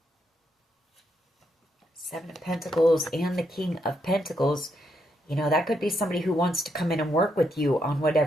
Seven of Pentacles and the King of Pentacles. You know, that could be somebody who wants to come in and work with you on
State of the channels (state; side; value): normal; both; correlation 0.78